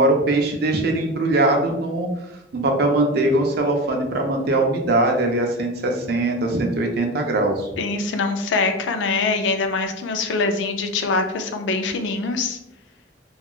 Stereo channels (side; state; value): both; normal; correlation 0.21